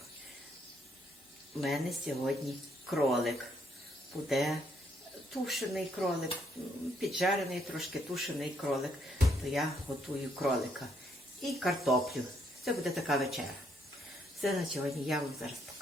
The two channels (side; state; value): both; normal; correlation 0.72